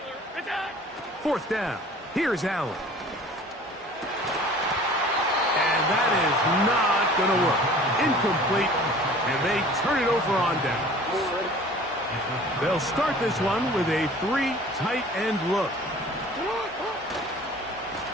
Attack! 4th down. Here's Allen. And that is not going to work. Incomplete. And they turn it over on down. They'll start this one with a 3 tight end look.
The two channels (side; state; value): both; normal; correlation 0.47